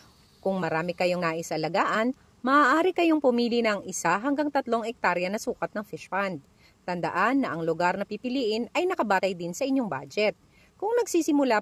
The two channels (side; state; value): both; identical; correlation 1.00